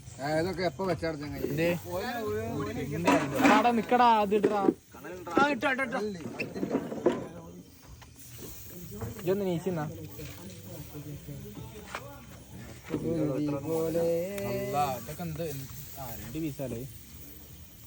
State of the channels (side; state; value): both; identical; correlation 1.00